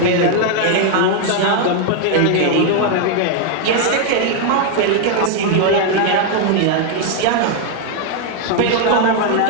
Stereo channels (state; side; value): different; both; correlation 0.00